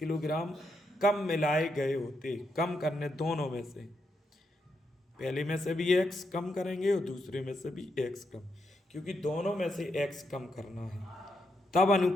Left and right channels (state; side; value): normal; both; correlation 0.81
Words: कम मिलाए गए होते, कम करने दोनों में से, पहले में से भी x कम करेंगे और दूसरे में से भी x कम, क्योंकि दोनों में से x कम करना है, तब